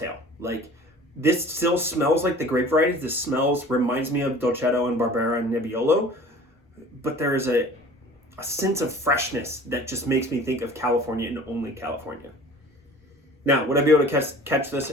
Like this still smells like the grape varieties. This reminds me of Dolcetto and Barbera and Nebbiolo, but there is a sense of freshness that just makes me think of California and only California. Now, would I be able to catch this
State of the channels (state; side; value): normal; both; correlation 0.45